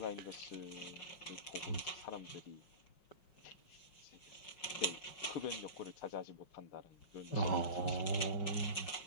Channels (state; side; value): late; right; 5.6 ms